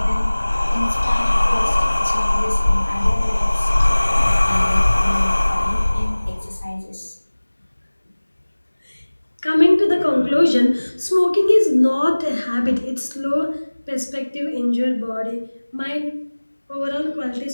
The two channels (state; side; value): inverted; both; correlation -1.00